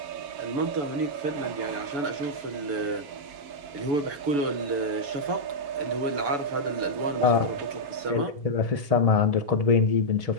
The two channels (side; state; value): left; late; 7.0 ms